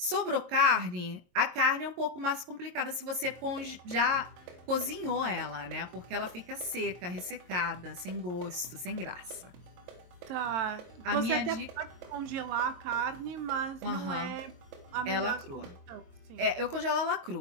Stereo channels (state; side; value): late; left; 22 ms